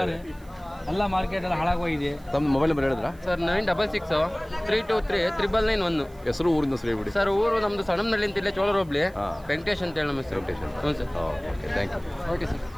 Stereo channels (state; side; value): noise; right; hiss, 28 dB below the sound